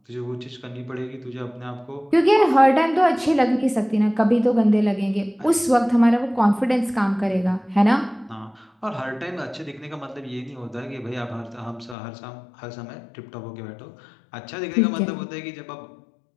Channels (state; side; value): drops out; right; at 12.0 s